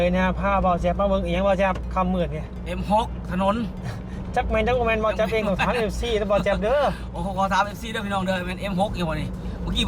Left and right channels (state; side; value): identical; both; correlation 1.00